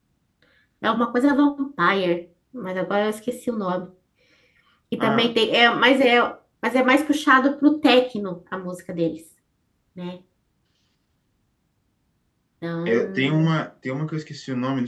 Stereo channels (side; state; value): both; identical; correlation 1.00